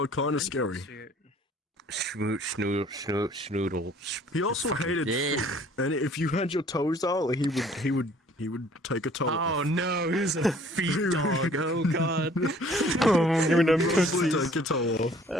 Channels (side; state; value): both; normal; correlation 0.55